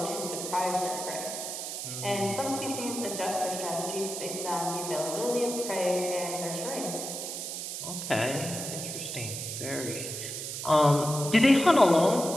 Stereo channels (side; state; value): right; noise; hiss, 6 dB below the sound